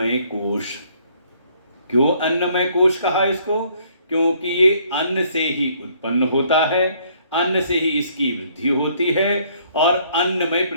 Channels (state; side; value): inverted; both; correlation -0.64